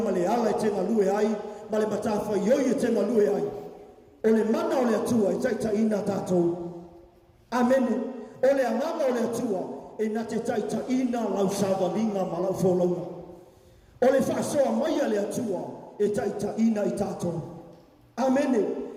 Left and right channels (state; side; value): identical; both; correlation 1.00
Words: le ala e te ngalue ai ma le matawha ioi e te ngalue ai o le mana o le atua e taita ina tātou. Amen. O le amanga o le atua e na te taita ina lau sāwalinga ma lau wholaunga o le whasoa mai a le atua e taita ina i tātou. Amene.